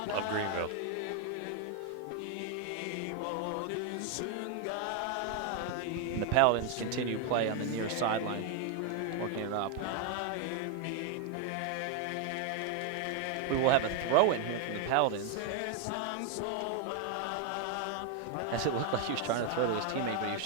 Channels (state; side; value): different; both; correlation 0.01